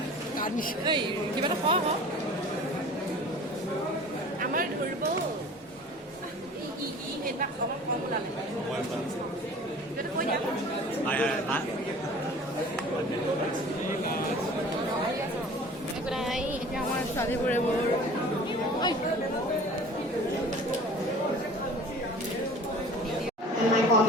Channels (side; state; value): both; normal; correlation 0.44